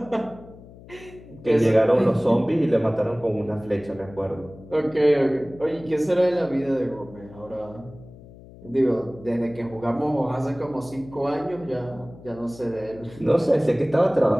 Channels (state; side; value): noise; left; hum, 19 dB below the sound